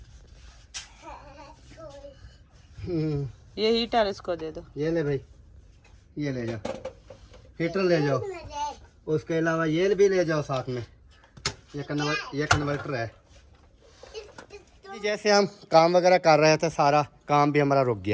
ये हीटर इसको दे दो। ये ले भाई, ये ले जाओ, हीटर ले जाओ। उसके अलावा ये भी ले जाओ साथ में। ये कन्वर्टर है। जैसे हम काम वगैरह कर रहे थे, सारा काम भी हमारा रुक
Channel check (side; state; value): both; identical; correlation 1.00